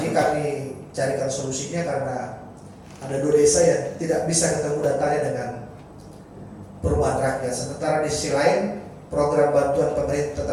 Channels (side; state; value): both; identical; correlation 1.00